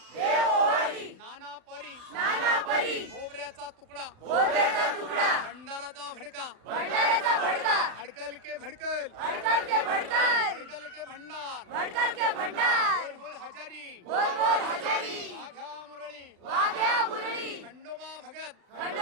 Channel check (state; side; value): late; left; 36 ms